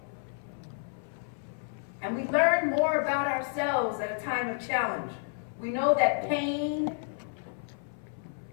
And we learn more about ourselves at a time of challenge. We know that pain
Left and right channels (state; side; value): silent; right; 57 dB below the other